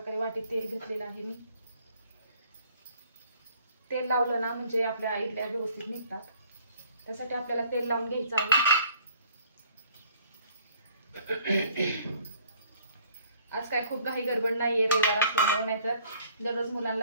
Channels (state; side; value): inverted; both; correlation -0.58